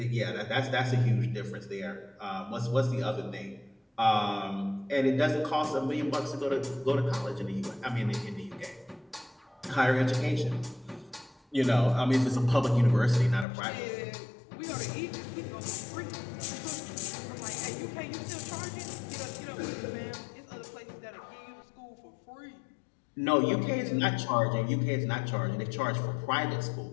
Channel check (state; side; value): drops out; right; at 13.5 s